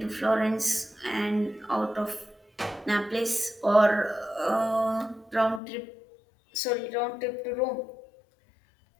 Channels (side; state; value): right; drops out; at 5.6 s